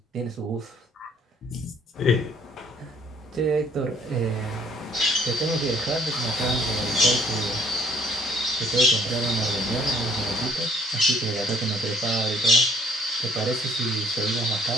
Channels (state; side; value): normal; both; correlation 0.60